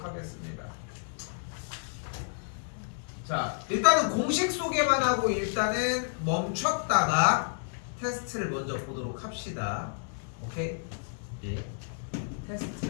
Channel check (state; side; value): silent; right; digital silence